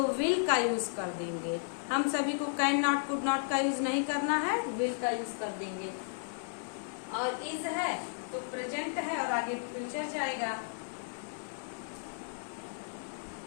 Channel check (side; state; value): right; silent; digital silence